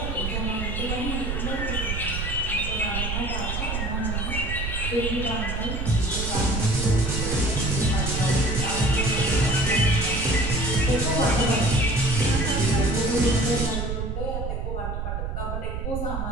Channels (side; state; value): right; noise; rumble, 3 dB below the sound